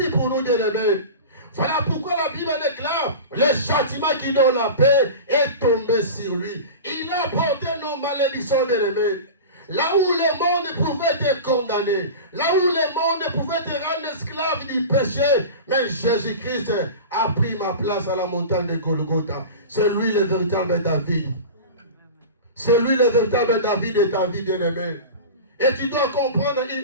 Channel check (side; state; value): both; inverted; correlation -0.31